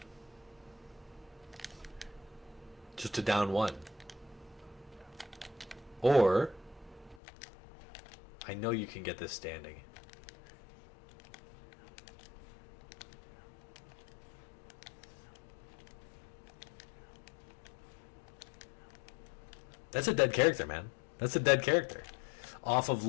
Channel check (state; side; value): drops out; right; at 7.2 s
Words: Just to down one. Or, I know you can get this standing. That's a dead character, man. That's a dead character. Off of